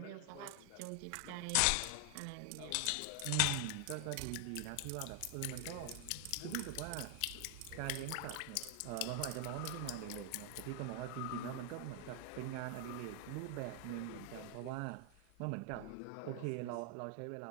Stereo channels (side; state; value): both; different; correlation 0.00